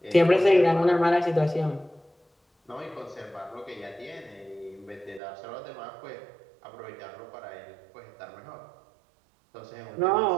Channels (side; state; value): left; drops out; at 5.2 s